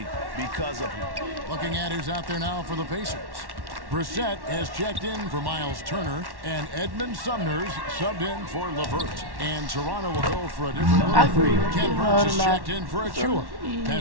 because of him. Looking at who's out there now for the Pacers. Brissett has checked in for Miles Turner, and Edmund Sumner's subbed in for LeVert. And Toronto will go for a different look. Ken Burns is checked in for Achua.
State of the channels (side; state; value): left; late; 1.1 ms